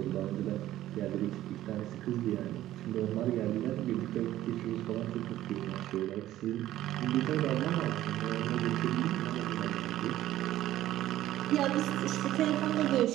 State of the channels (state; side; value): quieter; left; 14.0 dB